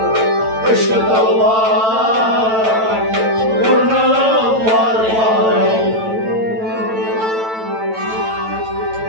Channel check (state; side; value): late; left; 9.1 ms